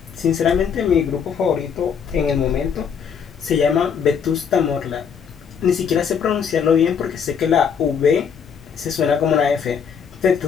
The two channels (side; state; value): right; quieter; 7.0 dB